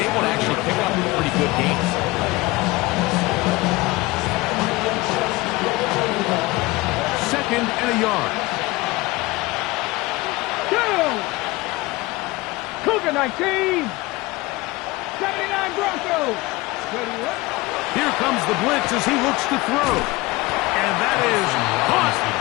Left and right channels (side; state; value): right; quieter; 21.4 dB